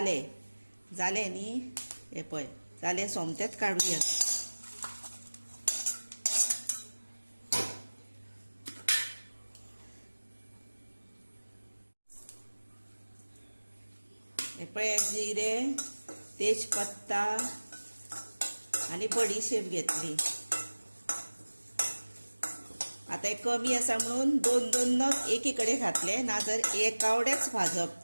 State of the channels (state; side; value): inverted; both; correlation -1.00